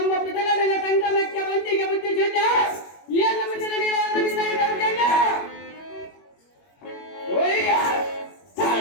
ಪಿತಗಡನ ಸಂಗಮಕ್ಕೆ ಬಂದಿಗೆ ಬುದ್ಧಿ ಚೆಂದ ಎಲ್ಲ ಮುಂದೆ ನಡೆಯಲಾದ ನಿರ್ಣಯ ದೌರ್ಜನ್ಯ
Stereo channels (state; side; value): late; right; 21 ms